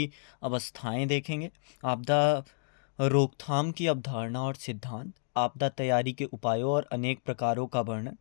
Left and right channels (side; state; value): right; silent; digital silence